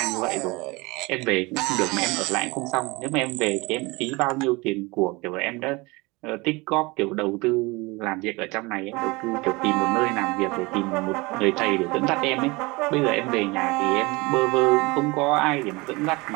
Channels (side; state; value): left; quieter; 24.5 dB